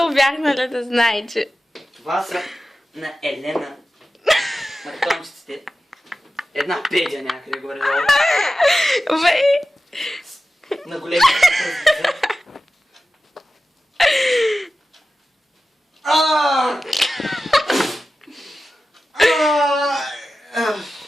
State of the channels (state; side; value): normal; both; correlation 0.94